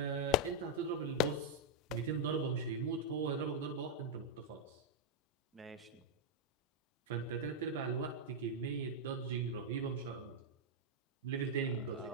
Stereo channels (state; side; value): normal; both; correlation -0.01